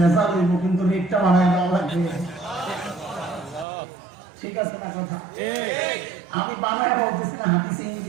হইব, কিন্তু রেটটা বাড়ায় দেওয়া লাগবে। ঠিক আছে না কথা? আমি বানায় বলতেছি না, হাদিসে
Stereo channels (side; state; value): left; drops out; at 3.7 s